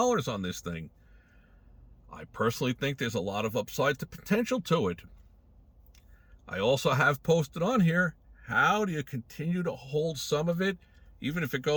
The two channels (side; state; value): both; identical; correlation 1.00